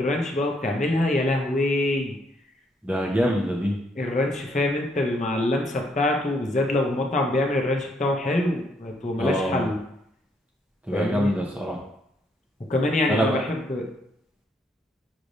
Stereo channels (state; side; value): normal; both; correlation 0.71